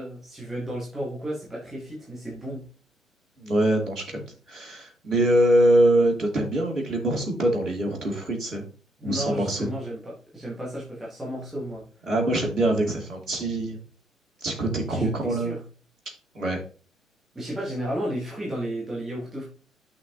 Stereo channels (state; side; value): normal; both; correlation 0.75